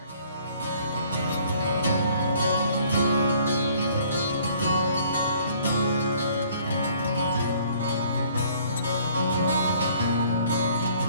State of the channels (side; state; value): both; inverted; correlation -0.58